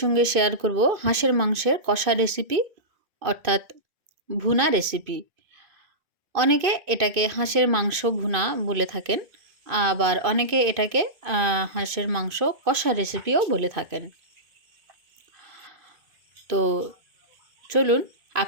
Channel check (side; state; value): left; late; 2.5 ms